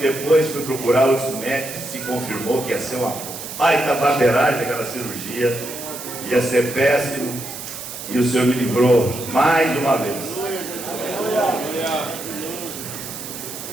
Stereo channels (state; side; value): noise; right; hiss, 10 dB below the sound